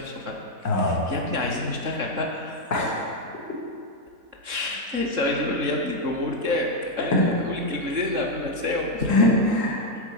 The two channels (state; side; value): late; left; 3.6 ms